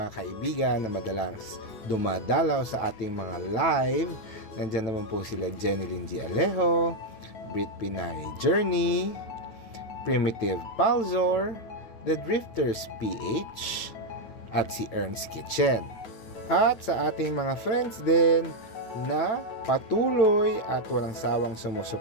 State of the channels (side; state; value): right; late; 9.0 ms